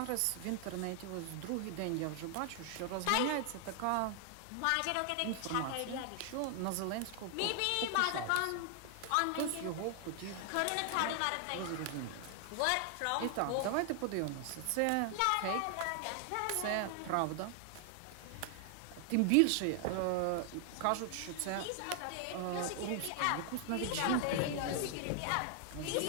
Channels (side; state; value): both; different; correlation 0.00